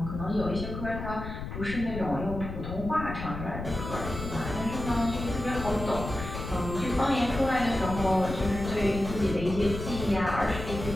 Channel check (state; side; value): noise; left; rumble, 7 dB below the sound